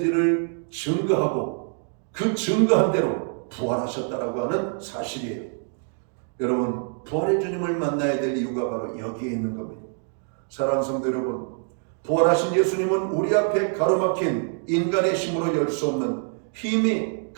증거하고 그 증거한 대로 부활하셨다라고 하는 사실이에요. 여러분 부활의 주님을 만나야 될 이유가 바로 여기에 있는 겁니다. 사랑하는 성도 여러분, 부활하신 예수님은 우리 앞에 가로막힌 인간의 힘으로 열 수 없는 힘이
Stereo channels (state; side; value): silent; left; 55 dB below the other